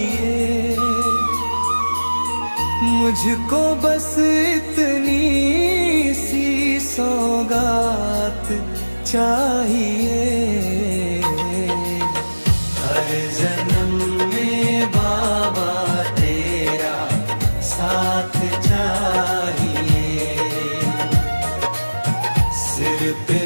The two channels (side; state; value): both; inverted; correlation -1.00